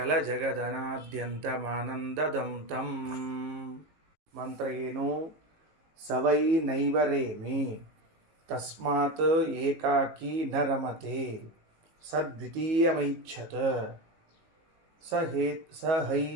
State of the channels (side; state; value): left; late; 18 ms